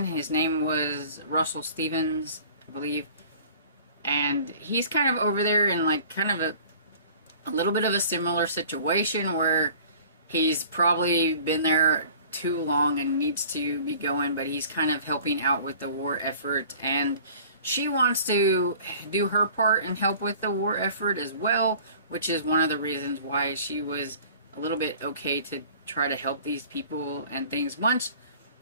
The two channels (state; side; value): inverted; both; correlation -0.47